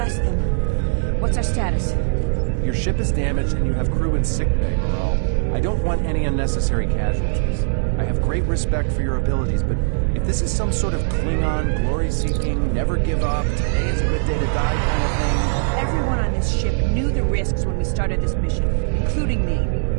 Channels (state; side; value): silent; left; 65 dB below the other